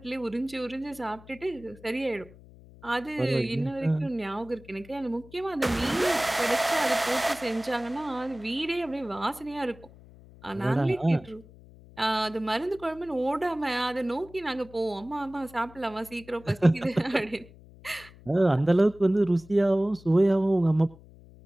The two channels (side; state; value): left; noise; hum, 22 dB below the sound